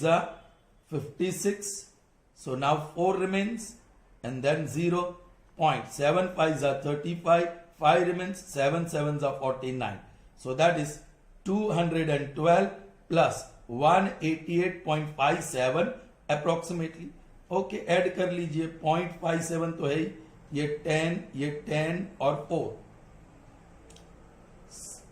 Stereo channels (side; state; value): both; identical; correlation 1.00